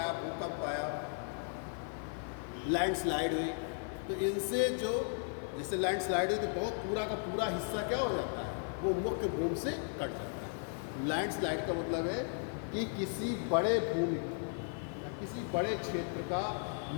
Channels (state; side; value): silent; right; 54 dB below the other